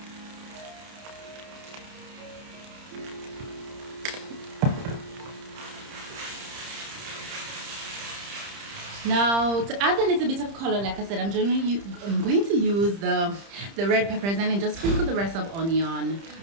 Now to add a little bit of color, like I said, I'm going to use the red peppers and then just sprinkle the rest of onion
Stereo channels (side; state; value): left; late; 30 ms